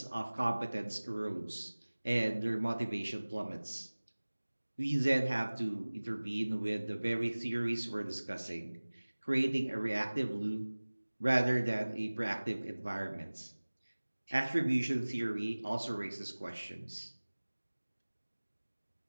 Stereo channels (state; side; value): inverted; both; correlation -1.00